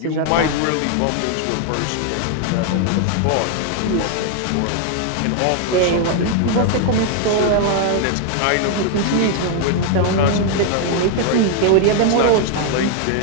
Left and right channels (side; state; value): both; different; correlation 0.00